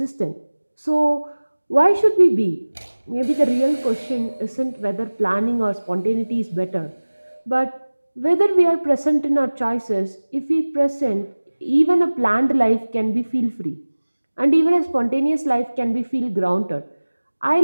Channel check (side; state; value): both; inverted; correlation -1.00